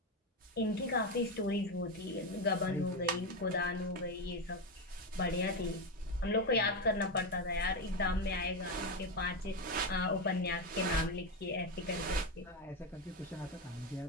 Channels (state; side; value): normal; both; correlation 0.11